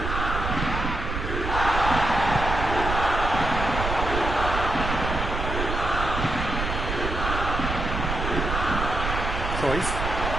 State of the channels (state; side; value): noise; right; rumble, 3 dB below the sound